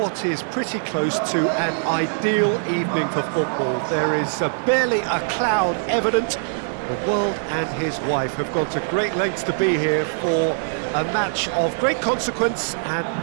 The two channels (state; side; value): silent; left; digital silence